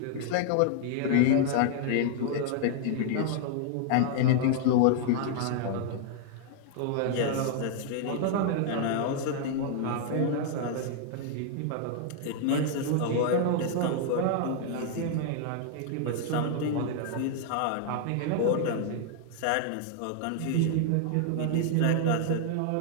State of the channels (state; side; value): different; both; correlation 0.00